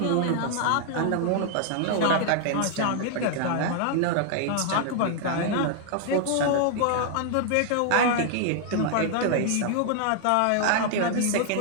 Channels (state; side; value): different; both; correlation 0.00